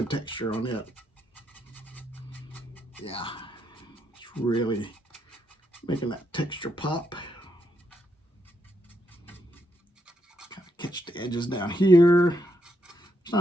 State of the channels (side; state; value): both; normal; correlation 0.79